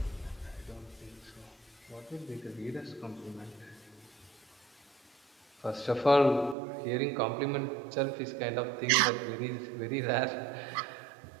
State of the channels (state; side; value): drops out; left; at 6.6 s